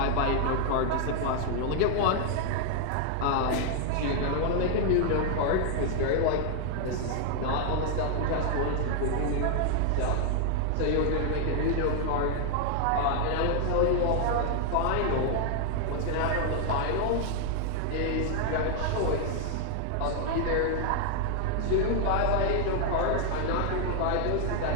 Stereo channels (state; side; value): different; both; correlation 0.00